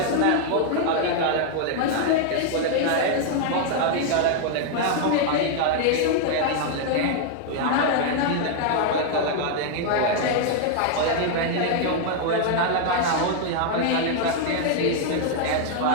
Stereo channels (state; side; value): different; both; correlation 0.00